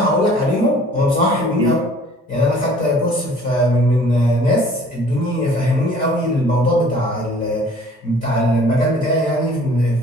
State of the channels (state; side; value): normal; both; correlation 0.52